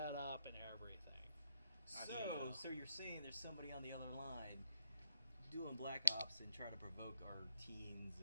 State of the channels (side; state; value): both; inverted; correlation -0.80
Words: up and everything. So you're saying there's somebody on the other line doing Black Ops and trying to provoke our teens